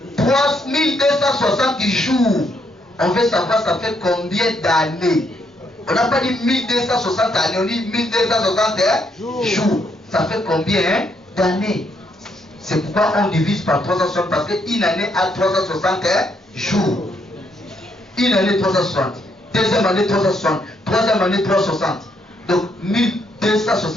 3260 jours. On veut savoir ça fait combien d'années. On n'a pas dit 1260 années, on dit 1260 jours. Ça fait combien d'années? C'est pourquoi on divise par 360, parce qu'une année a 360 jours. Une année 360. Deuxième année 360. Troisième année 360. Donc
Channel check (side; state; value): both; normal; correlation 0.74